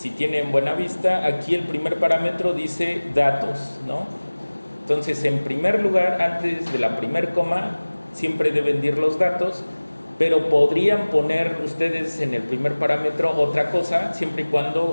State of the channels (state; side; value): inverted; both; correlation -1.00